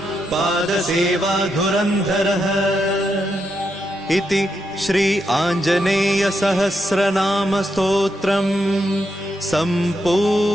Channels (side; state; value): both; normal; correlation 0.82